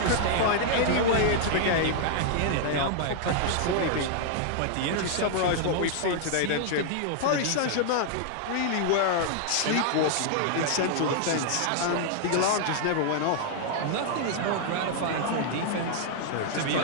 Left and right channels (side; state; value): both; different; correlation -0.01